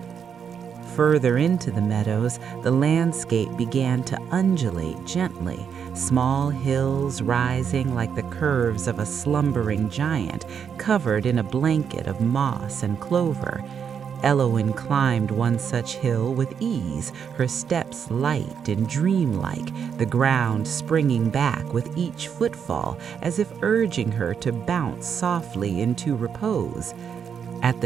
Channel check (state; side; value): quieter; left; 7.4 dB